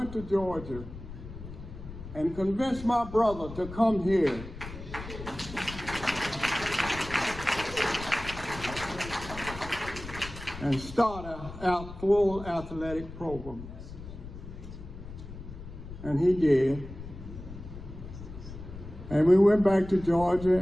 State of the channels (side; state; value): left; noise; rumble, 12 dB below the sound